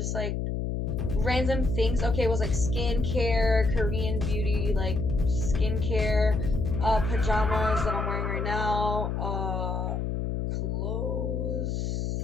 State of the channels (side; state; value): left; noise; hum, 1 dB below the sound